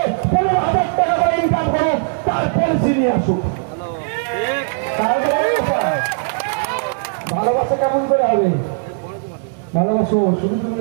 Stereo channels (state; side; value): silent; left; 67 dB below the other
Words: 15,000 টাকা করে ইনকাম করুক, তার পলিসি নিয়ে আসুক। ভালোবাসা কেমন করে হবে? ভালোবাসো শুধু তুমি